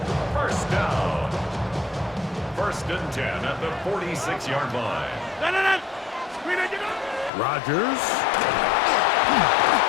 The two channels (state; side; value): drops out; right; at 7.3 s